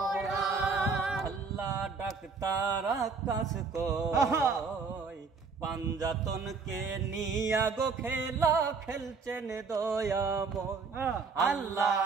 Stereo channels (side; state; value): left; quieter; 4.9 dB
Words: আল্লাহ ডাক্তার আকাশ কই পাঞ্জাতনকে নিয়া গো খেলা খেলছেন দয়াময়। আল্লাহ